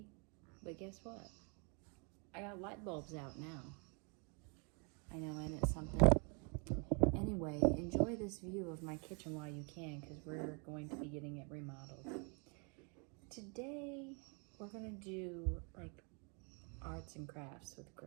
but guess what? I got light bulbs out now. I know, and it's something. Anyway, enjoy this view of my kitchen while you can, because we're going to be getting it remodeled. Today, we're going to do like arts and crafts with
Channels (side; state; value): left; quieter; 35.5 dB